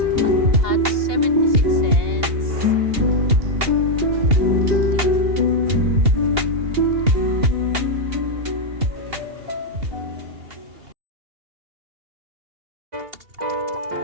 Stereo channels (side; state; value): left; late; 2.8 ms